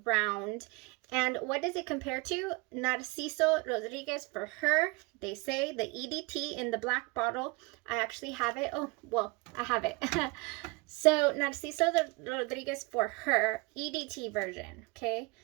round. And what does it compare to? Narciso Rodriguez for her. They say the EDT in the black bottle. I actually have it. Oh, well, I have it. So Narciso Rodriguez for her EDT version. Okay,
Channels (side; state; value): left; quieter; 25.7 dB